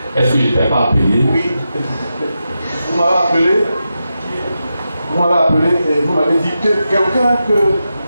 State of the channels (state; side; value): inverted; both; correlation -0.89